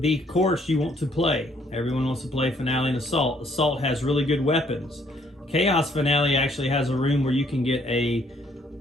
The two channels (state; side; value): normal; both; correlation 0.66